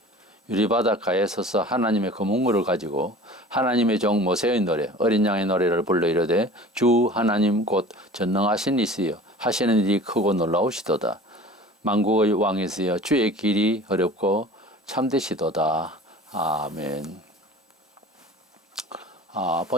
유리바닷가에 서서 하나님의 거문물을 가지고 하나님의 종 모세의 노래 어린 양의 노래를 불러 이르되 주 하나님 곧 전능하신 이시여 하시는 일이 크고 놀라우시도다. 만국의 왕이시여 주의 길이 어렵고 참되시도다. 아멘.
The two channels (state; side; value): normal; both; correlation 0.42